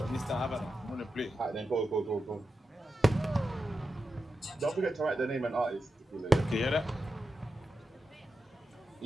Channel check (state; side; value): normal; both; correlation 0.89